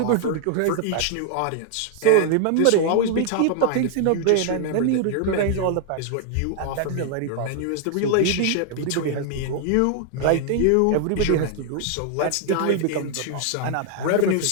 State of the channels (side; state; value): both; different; correlation 0.00